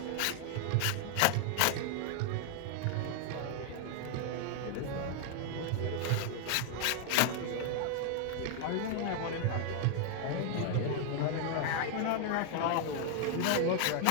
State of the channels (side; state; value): both; different; correlation 0.00